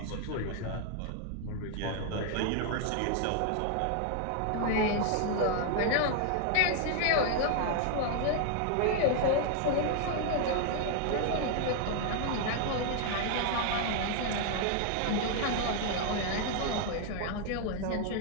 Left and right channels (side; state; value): both; different; correlation 0.00